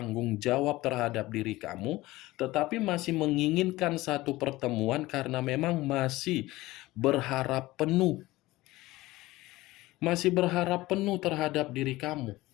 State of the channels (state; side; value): quieter; right; 18.7 dB